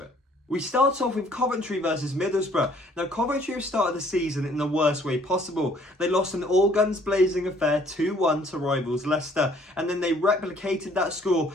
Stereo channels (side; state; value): both; normal; correlation 0.60